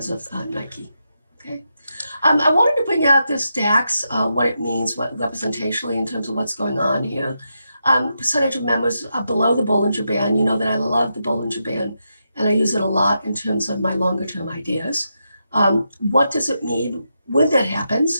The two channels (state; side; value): inverted; both; correlation -0.85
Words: of Nike. Okay, I wanted to bring out this DAX, what it means, what representationally in terms of what's going on here. Percentage of members are below the Bollinger Band. You know that I love the Bollinger Band, and I use it a lot in terms of my longer term ideas. What does it mean when that